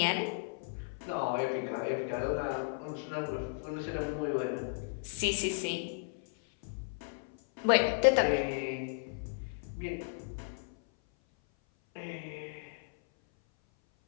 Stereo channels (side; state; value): right; silent; 55 dB below the other